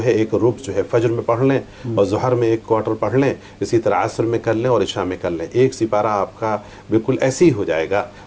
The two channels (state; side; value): identical; both; correlation 1.00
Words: ہے، ایک ربع جو ہے فجر میں پڑھ لیں، اور ظہر میں ایک کوارٹر پڑھ لیں، اسی طرح عصر میں کر لیں اور عشاء میں کر لیں۔ ایک سپارہ آپ کا بالکل ایسے ہی ہو جائے گا،